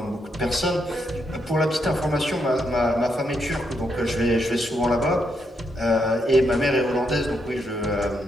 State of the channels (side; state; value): both; normal; correlation 0.79